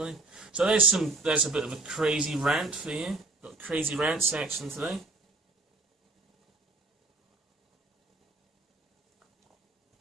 So there's a bit of a crazy rant for you. Got a crazy rant section today.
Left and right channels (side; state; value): left; quieter; 3.2 dB